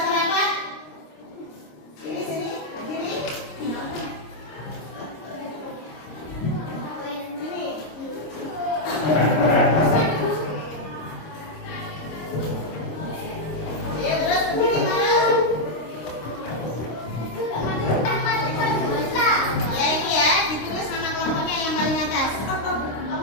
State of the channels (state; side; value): late; right; 26 ms